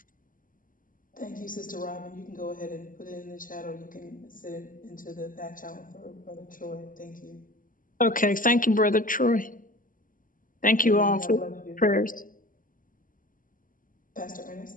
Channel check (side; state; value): right; late; 0.39 ms